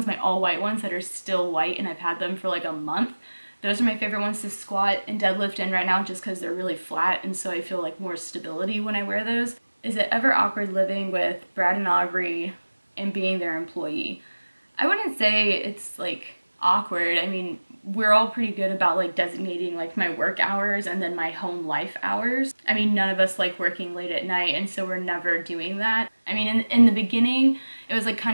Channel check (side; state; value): both; inverted; correlation -1.00